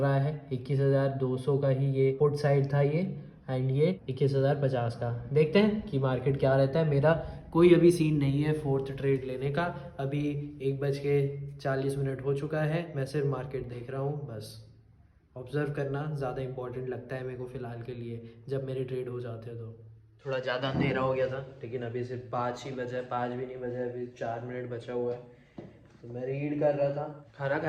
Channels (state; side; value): identical; both; correlation 1.00